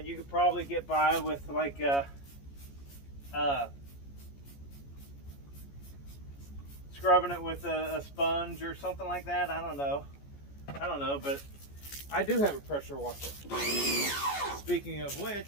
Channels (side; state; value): right; late; 14 ms